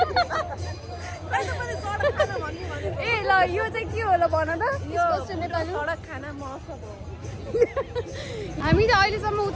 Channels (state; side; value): identical; both; correlation 1.00